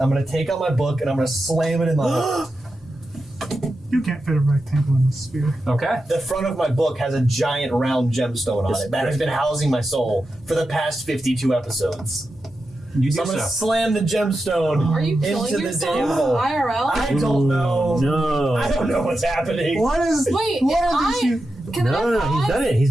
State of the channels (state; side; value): normal; both; correlation 0.90